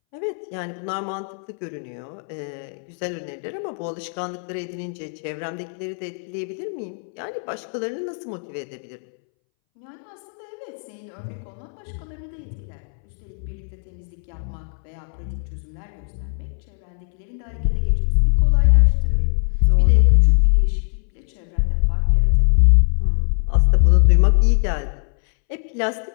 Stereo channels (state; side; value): silent; right; 64 dB below the other